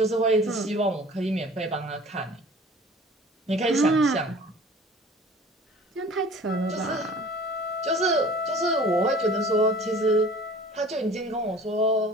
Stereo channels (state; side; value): normal; both; correlation 0.46